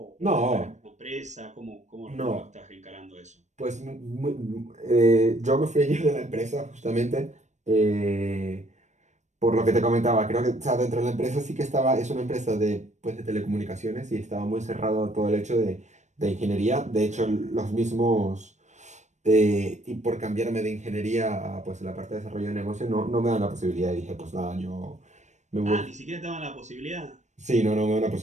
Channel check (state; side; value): late; left; 0.34 ms